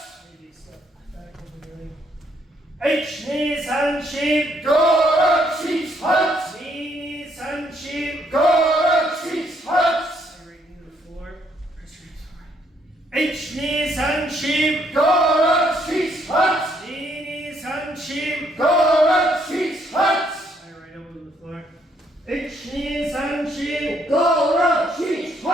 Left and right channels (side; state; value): both; normal; correlation 0.70